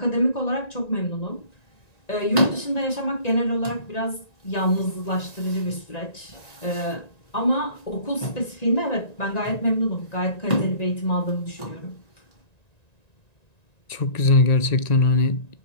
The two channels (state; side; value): late; right; 1.9 ms